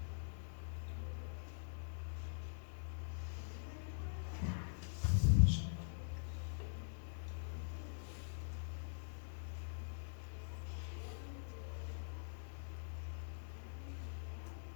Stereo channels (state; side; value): silent; right; digital silence